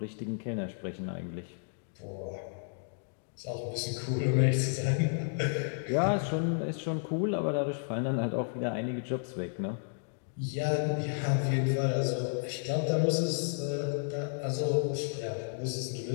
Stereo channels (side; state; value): right; silent; digital silence